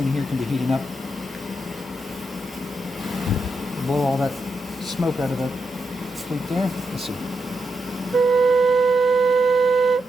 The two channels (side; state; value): both; normal; correlation 0.84